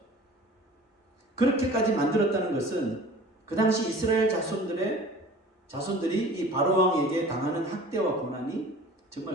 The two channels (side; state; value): both; normal; correlation 0.44